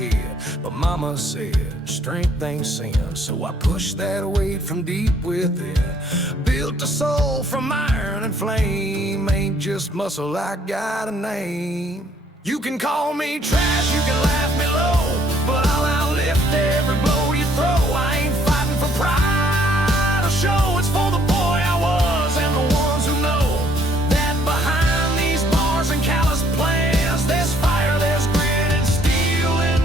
But mama said, strength ain't sin, so I pushed that weight from deep within. Built a soul from iron and flame, ain't just muscle, I got a name. You can call me trash, you can laugh me low, but I'll outlift every blow you throw. I ain't fighting for pride or show, it's for the boy I was and the ones who know that behind these bars and callous plans, there's fire, there's grit and steel in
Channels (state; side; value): normal; both; correlation 0.64